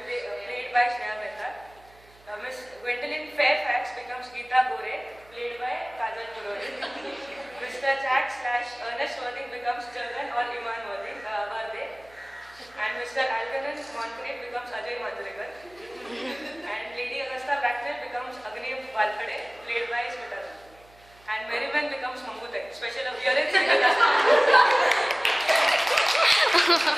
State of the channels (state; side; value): noise; right; hum, 27 dB below the sound